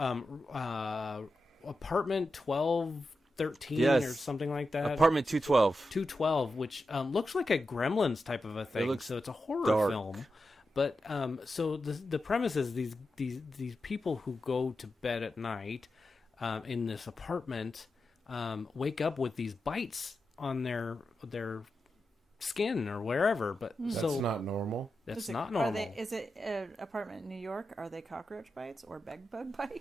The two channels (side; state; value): both; normal; correlation 0.89